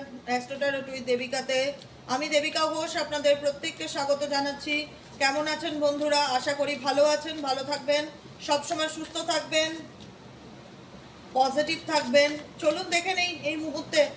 অ্যাস্ট্রোটারট with দেবিকাতে আমি দেবিকা ঘোষ আপনাদের প্রত্যেককে স্বাগত জানাচ্ছি। কেমন আছেন বন্ধুরা? আশা করি ভালো আছেন, ভালো থাকবেন, সবসময় সুস্থ থাকবেন, পজিটিভ থাকবেন। চলুন দেখে নেই এই মুহূর্তে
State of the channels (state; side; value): identical; both; correlation 1.00